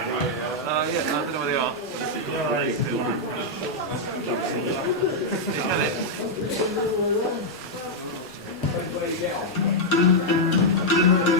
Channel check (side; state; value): both; normal; correlation -0.04